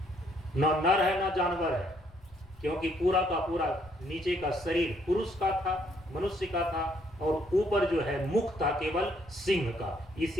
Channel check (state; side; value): noise; left; rumble, 24 dB below the sound